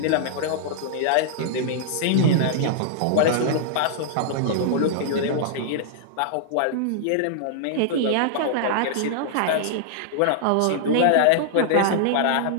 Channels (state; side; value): different; both; correlation -0.01